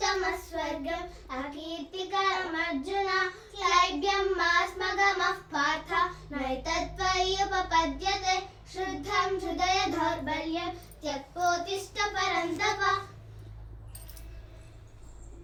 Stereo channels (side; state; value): both; identical; correlation 1.00